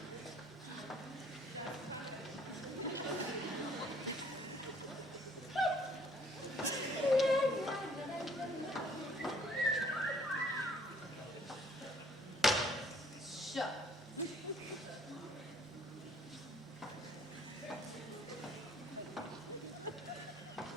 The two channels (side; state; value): both; normal; correlation 0.60